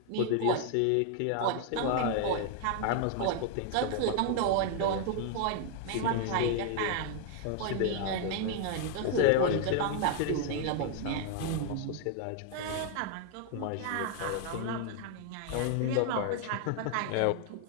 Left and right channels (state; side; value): different; both; correlation 0.00